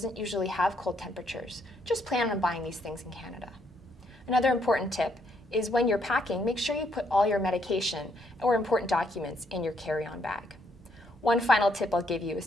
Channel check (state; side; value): normal; both; correlation 0.73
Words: usually have cold temperatures, just plan on buying these things in Canada. Another important tip is when you're packing, make sure you put all your medication or important documents in your carry-on bag. One final tip I'll give you is